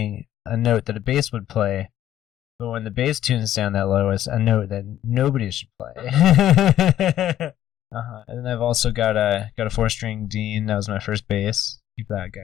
a note that a bass would play, but when the bass tunes down that low, it's a note that nobody should play. And then I've also got a 4-string Dean. That was my first bass. Keep that guy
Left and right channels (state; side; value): quieter; right; 12.1 dB